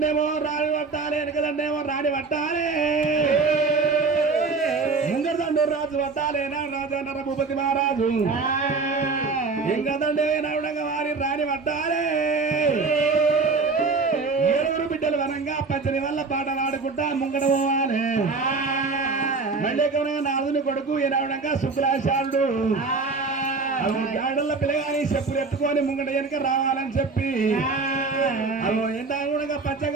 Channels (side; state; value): left; quieter; 4.2 dB